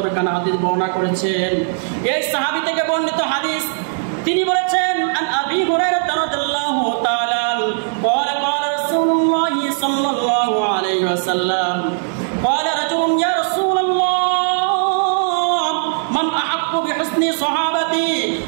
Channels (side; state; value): left; silent; digital silence